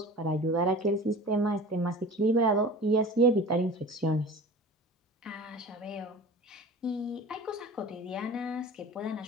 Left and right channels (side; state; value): both; normal; correlation 0.38